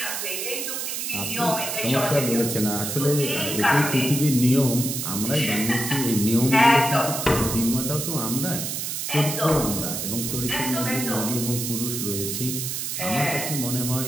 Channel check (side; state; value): right; noise; hiss, 3 dB below the sound